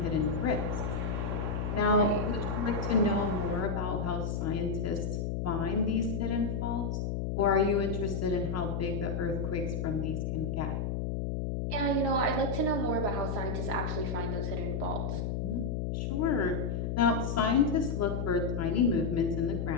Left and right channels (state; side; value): noise; left; hum, 1 dB below the sound